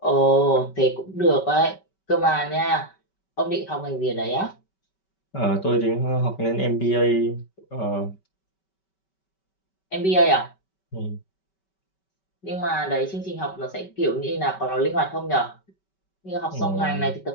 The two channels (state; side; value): late; right; 5.2 ms